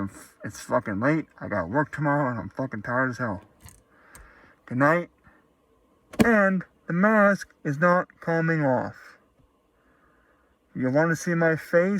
it's fucking late, I got work tomorrow, and I'm fucking tired as hell. Good night. And the mask is not coming off. You want to see my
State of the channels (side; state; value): both; identical; correlation 1.00